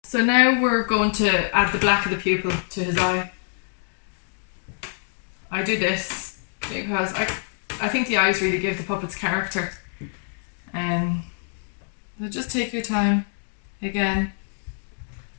So now we're going to add the black of the pupil to his eye. I do this because I think the eyes really give the puppets character. So just take your time again.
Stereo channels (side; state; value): right; silent; digital silence